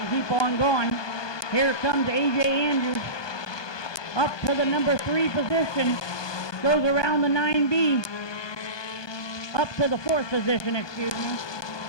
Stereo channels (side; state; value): right; late; 1.2 ms